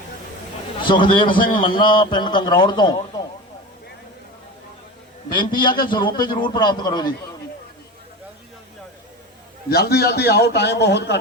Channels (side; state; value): both; normal; correlation 0.29